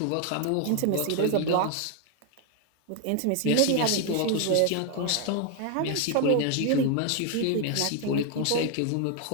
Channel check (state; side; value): different; both; correlation 0.00